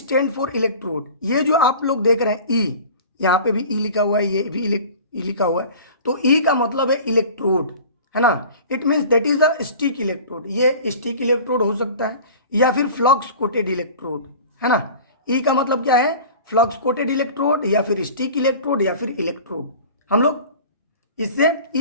फॉर इलेक्ट्रोड। ये जो आप लोग देख रहे हैं ई, यहाँ पे भी ई लिखा हुआ है, ये भी ई लिखा हुआ है, तो ई का मतलब है इलेक्ट्रोड, है ना। It means that is a stick electrode. ये स्टिक इलेक्ट्रोड हो सकता है या फिर फ्लक्स कोटेड इलेक्ट्रोड, है ना। ई का मतलब क्या है, फ्लक्स कोटेड इलेक्ट्रोड या फिर स्टिक इलेक्ट्रोड या फिर इलेक्ट्रोड। हम लोग इससे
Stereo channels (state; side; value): inverted; both; correlation -0.40